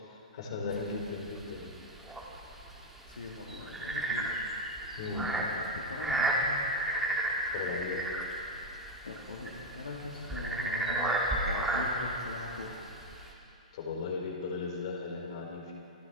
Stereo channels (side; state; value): both; normal; correlation 0.04